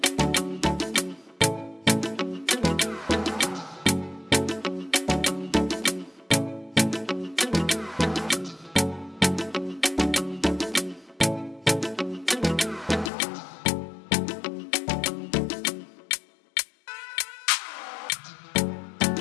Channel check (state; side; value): drops out; right; at 13.1 s